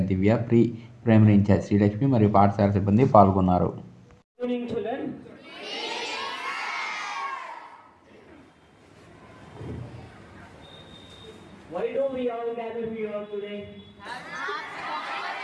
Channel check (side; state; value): both; identical; correlation 1.00